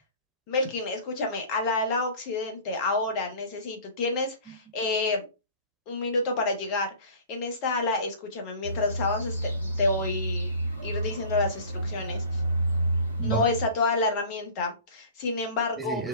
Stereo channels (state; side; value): inverted; both; correlation -0.43